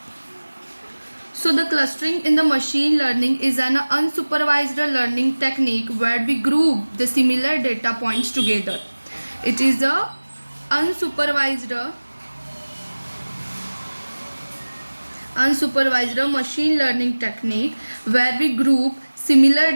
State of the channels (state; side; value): inverted; both; correlation -1.00